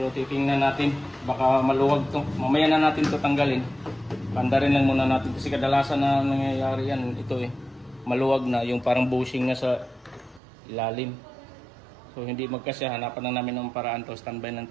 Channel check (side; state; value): left; drops out; at 10.4 s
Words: titingnan natin. Baka maluwag to. Mamaya na natin to tanggalin. Pandarin lang muna natin. Kasi kadalasan na nangyayari yan. Ito maluwag na. Yung parang bushing na sa ilalim. So hindi magkasya. Hanapan na namin ng paraan to. Standby